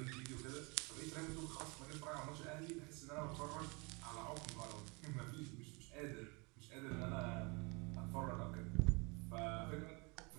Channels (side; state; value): left; quieter; 29.3 dB